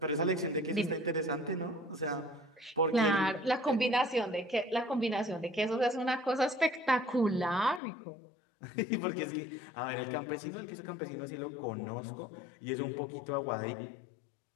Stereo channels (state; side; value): drops out; right; at 7.8 s